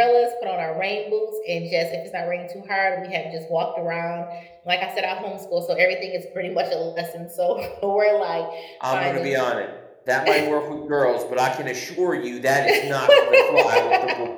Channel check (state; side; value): identical; both; correlation 1.00